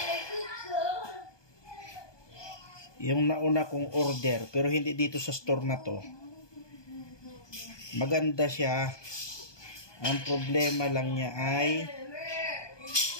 Yung nauna kong order, pero hindi dito sa store na to. Maganda siya. Ang problema lang niya ay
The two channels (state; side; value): late; right; 1.2 ms